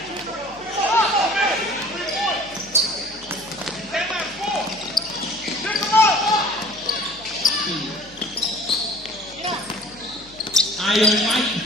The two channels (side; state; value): left; noise; hum, 23 dB below the sound